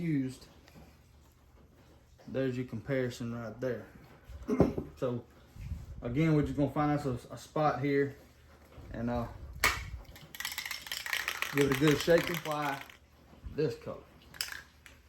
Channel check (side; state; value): both; identical; correlation 1.00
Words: there's your comparison right there. So again, we're just gonna find us a spot here and give it a good shake and apply this color.